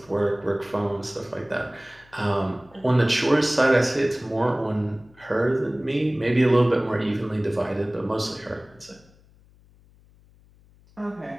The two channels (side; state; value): left; noise; hum, 28 dB below the sound